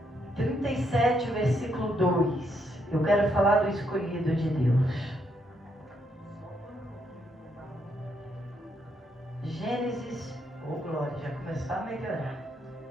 37, versículo 2. Eu quero falar do escolhido de Deus. Gênesis, oh glória, já começou a melhorar.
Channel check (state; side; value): normal; both; correlation 0.76